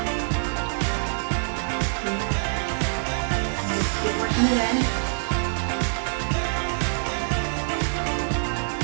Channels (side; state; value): left; silent; 62 dB below the other